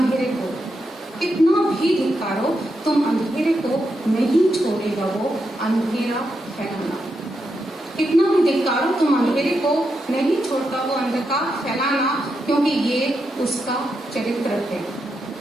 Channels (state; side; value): normal; both; correlation 0.84